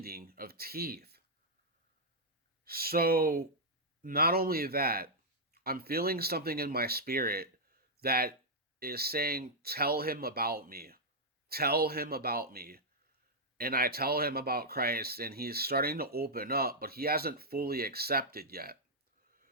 of teeth. So, not only that, I'm feeling something in my spirit that is saying, "Tell him about me. Tell him about me." And I tell him about Christ, and he's starting to open up, but he hasn't fully accepted yet.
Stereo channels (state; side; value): normal; both; correlation -0.06